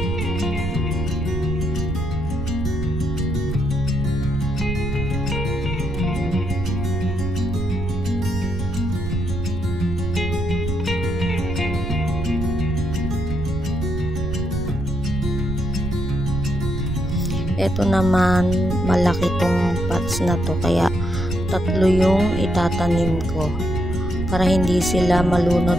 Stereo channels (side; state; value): right; noise; rumble, 5 dB below the sound